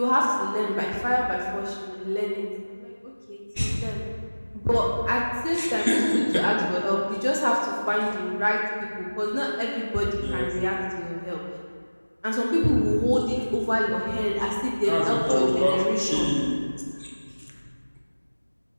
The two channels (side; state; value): both; inverted; correlation -1.00